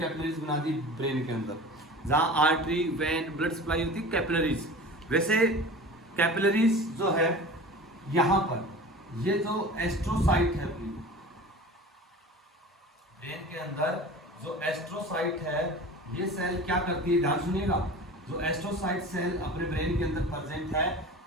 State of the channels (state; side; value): normal; both; correlation 0.37